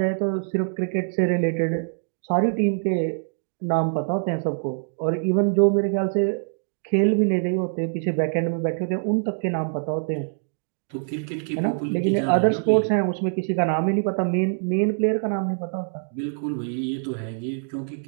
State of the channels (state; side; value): silent; left; digital silence